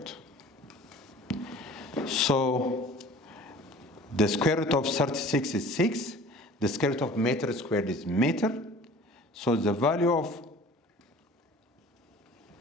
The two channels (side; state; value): both; normal; correlation 0.46